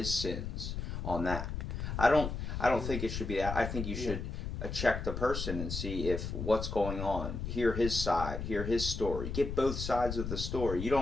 sins on that? I don't think it should be that. I think you should check the person and see if what's going on. Hear his side. Hear his story. Get both sides of the story. You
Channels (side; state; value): left; noise; rumble, 4 dB below the sound